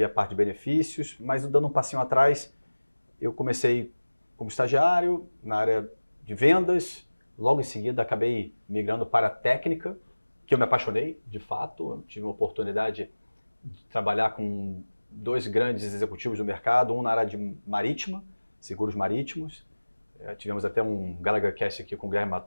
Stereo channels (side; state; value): both; inverted; correlation -1.00